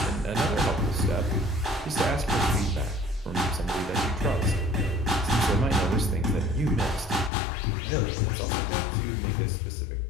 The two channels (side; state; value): right; drops out; at 7.3 s